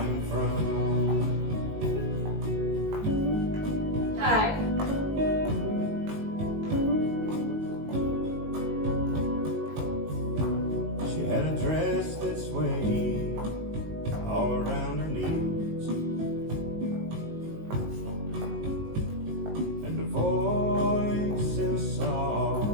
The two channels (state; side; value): late; left; 19 ms